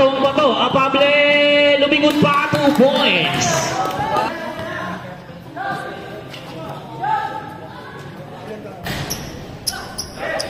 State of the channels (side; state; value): both; identical; correlation 1.00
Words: bato, Apable, lumingon pa, 2 points.